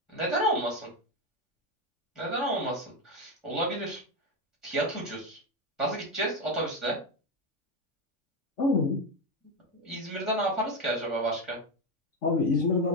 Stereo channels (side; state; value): both; normal; correlation 0.11